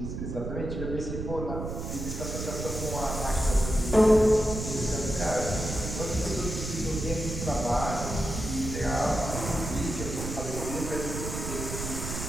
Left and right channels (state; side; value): noise; right; rumble, 5 dB below the sound